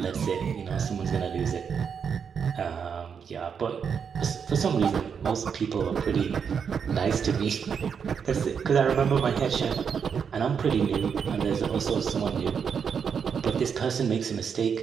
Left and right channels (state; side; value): quieter; left; 6.8 dB